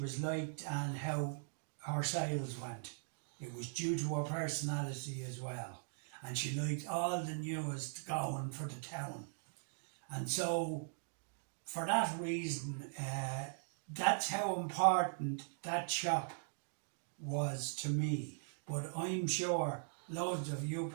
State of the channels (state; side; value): silent; left; digital silence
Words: was liked and how her sales went. It was due to her personality as well, and she liked all the newest going for the town. And so for that reason, that's how important that shop was to me. But I'm sure loads of you